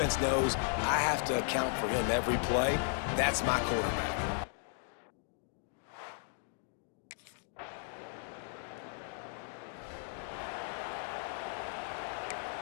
knows I have to account for him every play. That's my quarterback.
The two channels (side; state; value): right; silent; 54 dB below the other